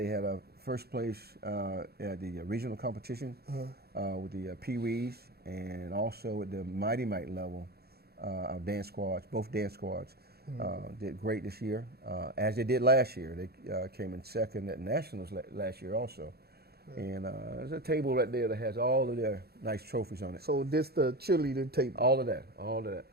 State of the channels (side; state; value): left; late; 0.46 ms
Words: had a first place at the regional competition with the Pee-wees, and also at the Mighty Mite level, our dance squads, both dance squads, did great this year, as they did last year. They came in second at Nationals last year also. And there's a table right there that has all of their nice trophies on it. So this the cheerleading table? All of that, all of that.